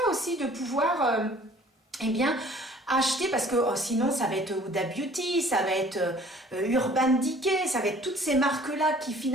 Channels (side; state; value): both; normal; correlation 0.53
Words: aussi de pouvoir, acheter, parce que sinon, ça va être Huda Beauty, ça va être Urban Decay, ça va être toutes ces marques-là qui